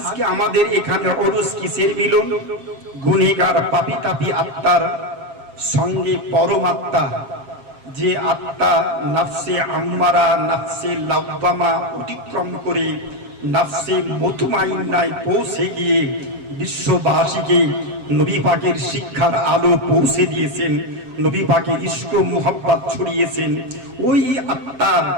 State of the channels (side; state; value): left; late; 7.4 ms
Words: আমাদের এখানে উরুস কিসের মিলন? গুনেহগার পাপী তাপী আত্মার সঙ্গে পরমাত্মা, যে আত্মা নফসে আম্মারা, নফসে লাওয়ামা অতিক্রম করে নফসে মুতমাইন্নায় পৌঁছে গিয়ে বিশ্ববাসীকে নবী পাকের শিক্ষার আলো পৌঁছে দিয়েছেন, নবী পাকের ইশক মুহাব্বত ছড়িয়েছেন। ওই আত্মার